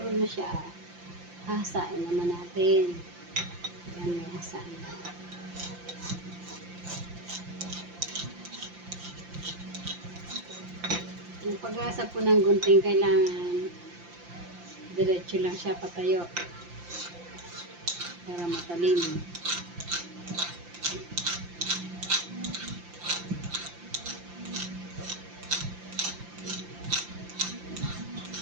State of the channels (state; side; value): late; left; 5.8 ms